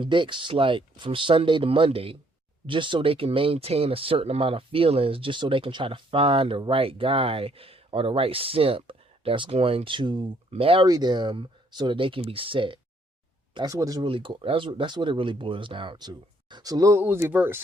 dicks like from Sunday to Monday just so they can maintain a certain amount of feelings, just so they can try to find the right guy or the right simp that's going to marry them so that they can be set. That's what it's really that's what it really boils down to. So Lil Uzi Vert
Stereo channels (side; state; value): both; normal; correlation 0.67